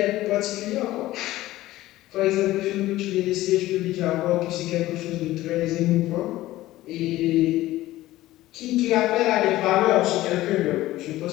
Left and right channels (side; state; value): right; quieter; 16.2 dB